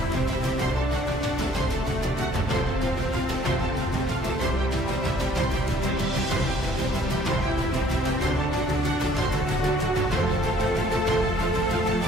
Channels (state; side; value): normal; both; correlation 0.59